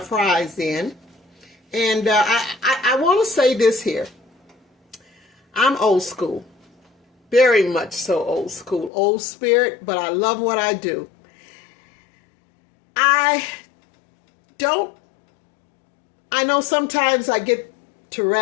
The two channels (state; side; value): drops out; right; at 8.9 s